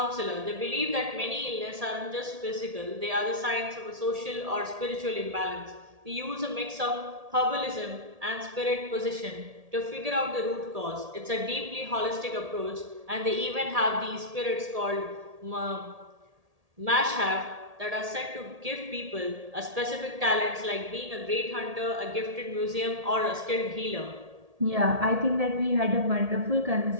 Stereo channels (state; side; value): late; left; 1.8 ms